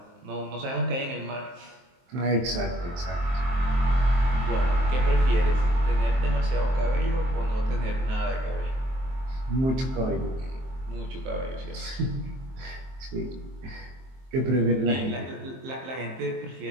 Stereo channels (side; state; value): left; late; 23 ms